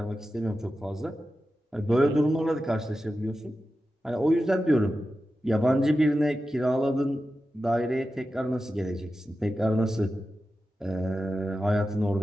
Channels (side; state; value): both; normal; correlation 0.92